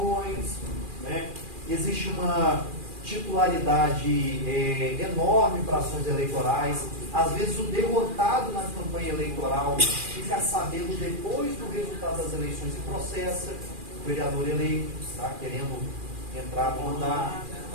né? Existe uma titularidade enorme para ações eleitorais. Às vezes o derrotado na campanha eleitoral fica sabendo depois do resultado das eleições e processa o vereador eleito, tá? Querendo entrar no mandato.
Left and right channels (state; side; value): late; left; 2.4 ms